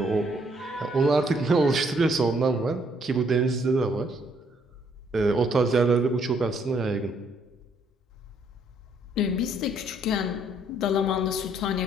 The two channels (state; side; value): normal; both; correlation 0.68